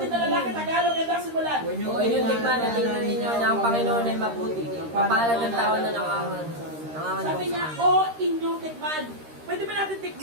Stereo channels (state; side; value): late; left; 13 ms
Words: na lalaki, Tagalog, ang dasi mo lang. O inyong tikman at tingnan ninyo na ang Panginoon ay mabuti. Kapalad ng tao na nangangan. Sabi niya, oh, inyong tikman. Pwede ba natin